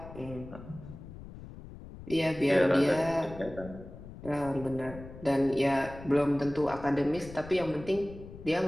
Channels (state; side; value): noise; left; rumble, 15 dB below the sound